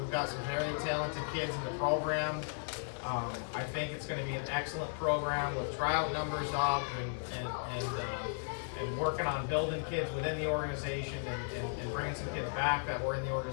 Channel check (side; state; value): right; silent; digital silence